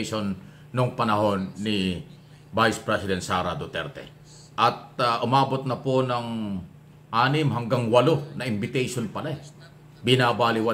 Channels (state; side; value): identical; both; correlation 1.00